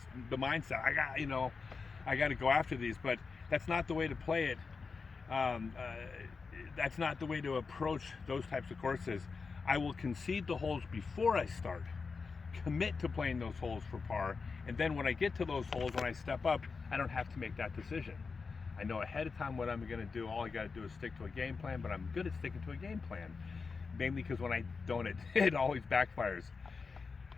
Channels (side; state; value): right; quieter; 4.8 dB